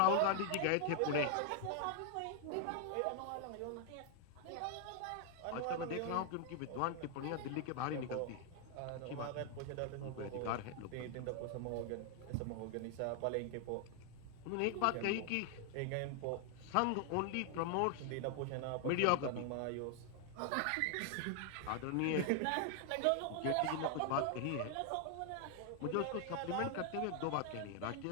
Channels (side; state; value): both; different; correlation 0.00